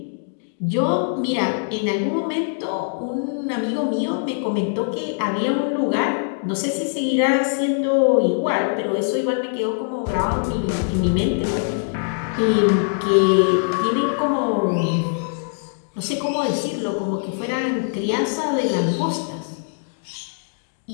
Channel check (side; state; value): right; silent; digital silence